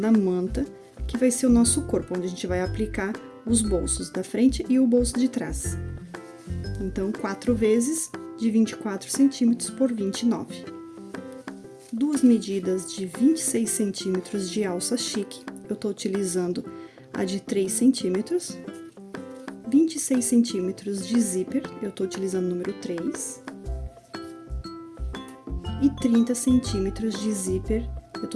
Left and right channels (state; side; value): identical; both; correlation 1.00